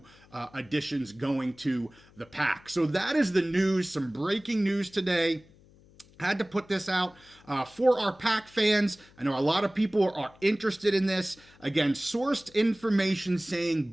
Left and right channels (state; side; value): noise; left; hum, 27 dB below the sound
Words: additions going to the PAC. So that is the news, some breaking news today. Had to put this out for our PAC fans. I know a lot of people are interested in this. Again, sourced information saying